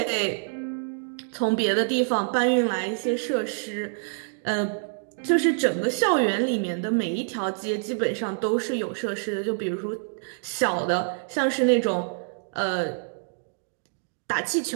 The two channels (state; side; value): silent; left; digital silence